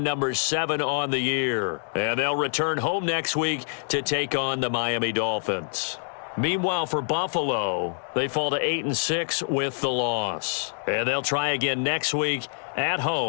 number 7 on the year, and they'll return home next week to take on the Miami Dolphins. Meanwhile, for Buffalo, they fall to 8-6 with the loss. And they'll try again next week at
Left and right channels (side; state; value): right; silent; digital silence